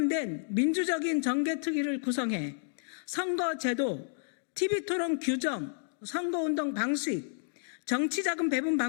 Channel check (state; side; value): silent; right; digital silence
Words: 민주적인 정개특위를 구성해 선거제도, TV토론 규정, 선거운동 방식, 정치자금 배분